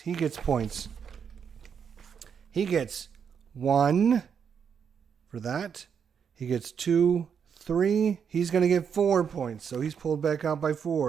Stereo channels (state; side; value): quieter; left; 7.2 dB